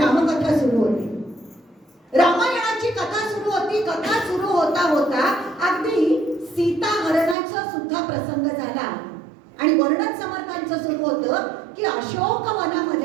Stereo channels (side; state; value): left; drops out; at 7.4 s